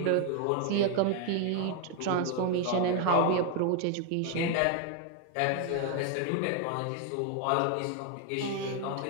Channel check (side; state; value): both; different; correlation 0.00